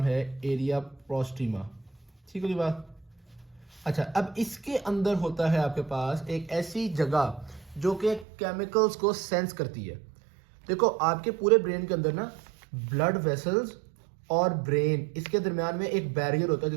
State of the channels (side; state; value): left; drops out; at 8.2 s